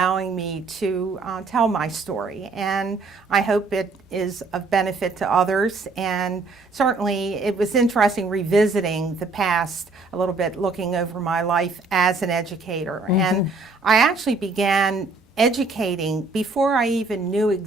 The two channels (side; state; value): left; quieter; 3.7 dB